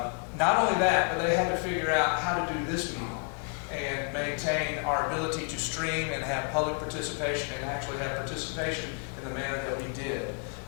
only that, but they had to figure out how to do this meeting and maintain our ability to stream and have public participation, and actually have participation in the manner that we did,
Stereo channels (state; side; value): quieter; right; 39.1 dB